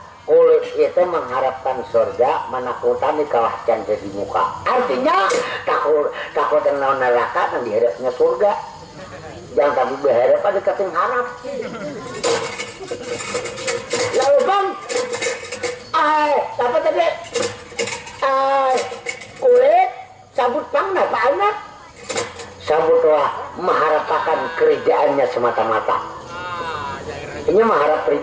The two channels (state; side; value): identical; both; correlation 1.00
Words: Kulit itu mengharapkan surga, menakutan di kawasan jadi muka. Artinya takut dengan neraka dan dihadapnya surga. Jangan tapi berharap pada keting harap. Lalu Bang, apa tadi? Kulit sabut Bang, apa anak? Sabutlah mengharapkan kerjaannya semata-mata. Ini mengharap